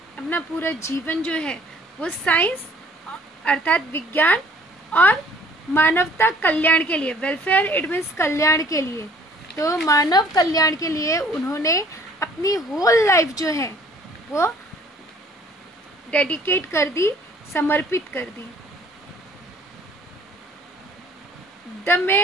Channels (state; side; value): normal; both; correlation 0.57